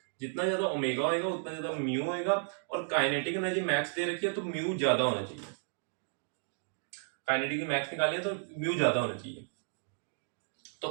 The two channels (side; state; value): left; silent; digital silence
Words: जितना ज्यादा ओमेगा होएगा उतना ज्यादा म्यू होएगा। और काइनेटिक एनर्जी मैक्स दे रखी है, तो म्यू ज्यादा होना चाहिए। काइनेटिक मैक्स निकालिए तो म्यू ज्यादा होना चाहिए। तो